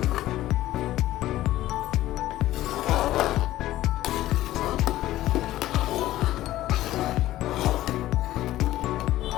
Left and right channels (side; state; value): right; quieter; 15.0 dB